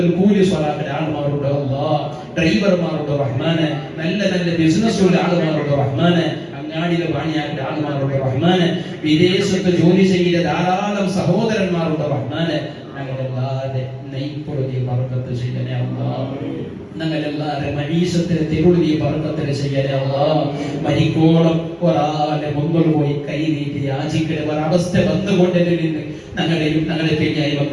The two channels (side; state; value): both; identical; correlation 1.00